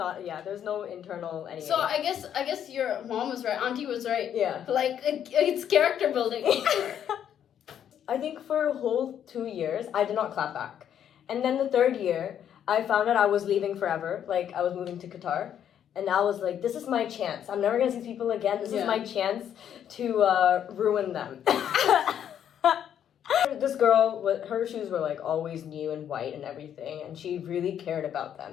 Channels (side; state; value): right; quieter; 9.5 dB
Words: internal anything. So I guess your mom was right. Auntie was right. Yeah. Like it's character building. I think for a whole 2 years I did not clap back, and then the third year I found out I was leaving forever. Like I was moving to Qatar, and I was like, this is my chance. I'm never gonna see people again. This is my chance to ruin them. This girl, her shoes were like always new and white and everything, and she really cared about them.